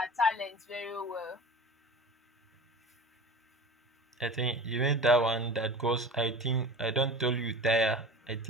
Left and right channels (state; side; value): normal; both; correlation 0.36